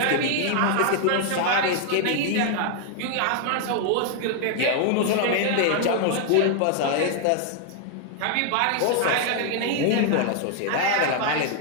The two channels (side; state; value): both; different; correlation 0.00